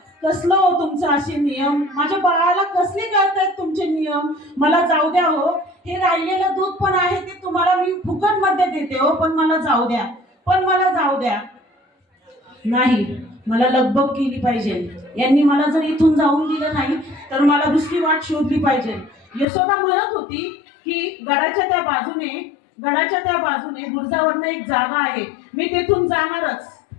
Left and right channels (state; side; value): drops out; right; at 19.5 s